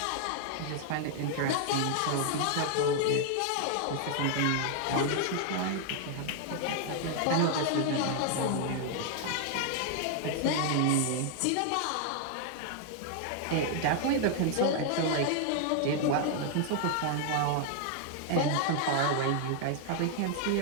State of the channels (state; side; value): different; both; correlation 0.00